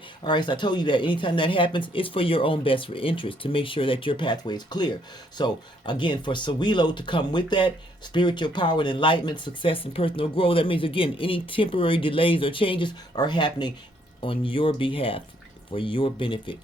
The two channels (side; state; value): both; normal; correlation 0.69